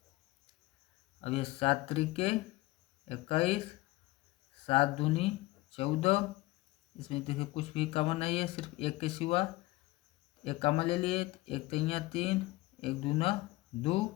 अब ये 7 त्रिके 21, 7 दूनी 14, इसमें देखिए कुछ भी कॉमन नहीं है, सिर्फ एक के सिवा एक कॉमन ले लिए। 1 तिया 3, 1 दूना 2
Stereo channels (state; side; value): quieter; right; 19.8 dB